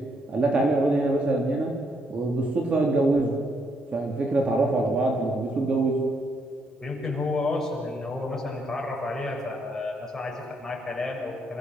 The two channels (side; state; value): both; normal; correlation 0.74